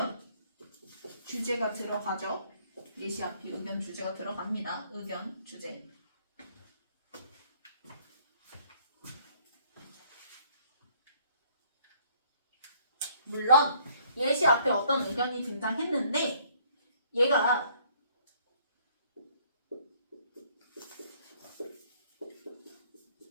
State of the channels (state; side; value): inverted; both; correlation -0.62